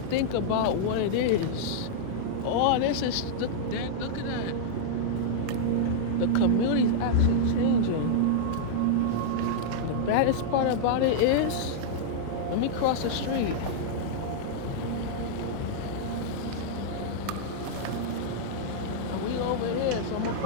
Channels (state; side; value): different; both; correlation -0.02